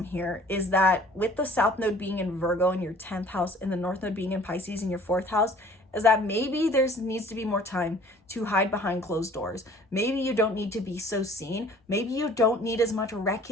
here is that with the South Node being in Virgo in your 10th house and the North Node being in Pisces in your 4th house, is that maybe there needs to be more time to hide behind closed doors. Maybe you don't need to be so seen. Maybe you don't need as much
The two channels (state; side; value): normal; both; correlation 0.52